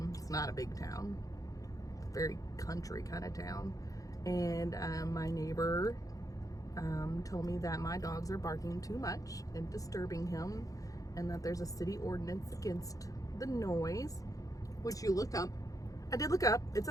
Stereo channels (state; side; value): late; right; 0.17 ms